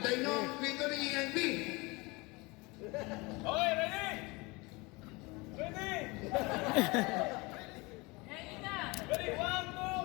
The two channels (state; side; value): quieter; right; 25.1 dB